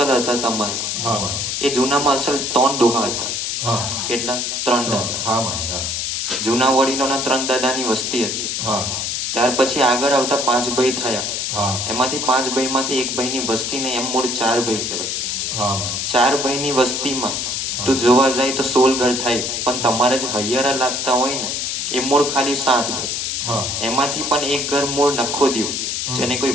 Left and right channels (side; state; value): left; noise; hiss, 1 dB below the sound